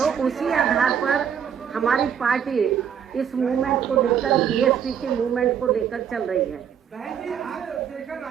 उसी आधार पर हमारी पार्टी इस मूवमेंट को लेकर, बीएसपी के मूवमेंट को लेकर चल रही है। बहन जी, आज शेखर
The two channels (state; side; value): quieter; left; 8.2 dB